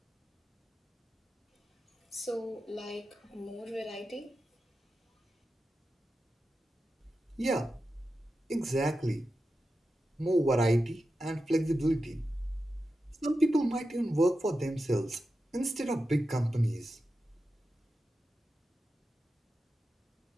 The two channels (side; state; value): both; normal; correlation 0.91